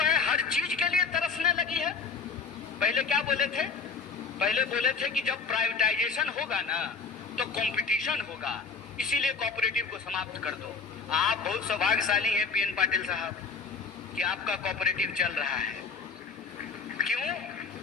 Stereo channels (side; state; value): right; quieter; 5.0 dB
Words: है हर चीज के लिए तरसने लगी है। पहले क्या बोले थे? पहले बोले थे कि जब प्राइवेटाइजेशन होगा ना तो कंपटीशन होगा, इसीलिए कोऑपरेटिव को समाप्त कर दो। आप बहुत सौभाग्यशाली हैं पीएन पाटिल साहब कि आपका कोऑपरेटिव चल रहा है। क्यों?